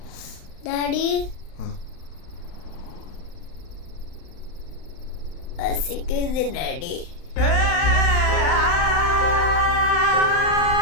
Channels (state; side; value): late; right; 31 ms